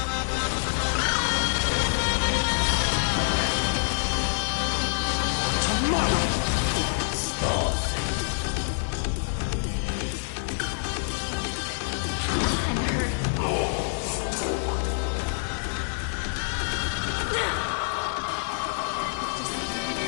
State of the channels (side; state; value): right; silent; 57 dB below the other